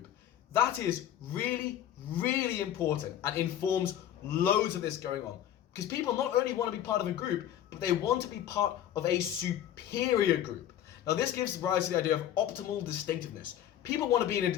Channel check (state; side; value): quieter; right; 11.0 dB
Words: That is really, really important and informs loads of this going on. Because people not only want to be part of a group, but they want to be part of a superior group. Now this gives rise to the idea of optimal distinctiveness. People want to be in